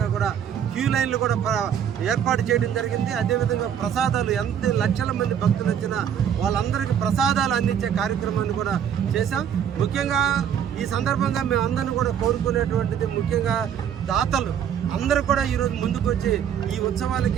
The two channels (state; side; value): quieter; left; 8.8 dB